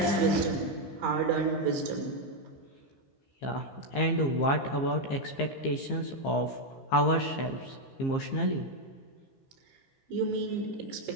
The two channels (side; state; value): right; late; 15 ms